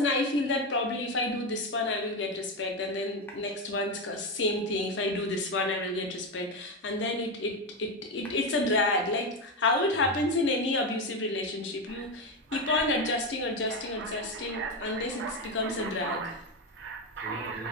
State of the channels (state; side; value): normal; both; correlation 0.13